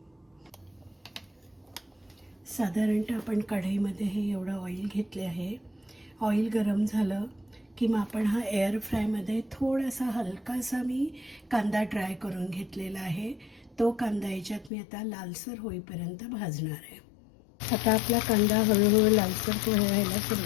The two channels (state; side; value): drops out; right; at 14.7 s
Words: साधारणतः आपण कढईमध्ये हे एवढं ऑइल घेतले आहे. ऑइल गरम झालं की मग आपण हा एअर फ्रायमध्ये थोडासा हलकासा मी कांदा ड्राय करून घेतलेला आहे. तो कांदा याच्यात मी आता लालसर होईपर्यंत भाजणार आहे. आता आपला कांदा हळूहळू लालसर व्हायला